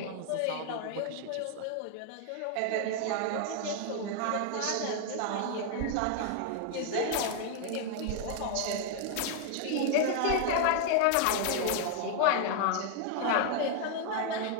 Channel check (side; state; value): both; different; correlation 0.00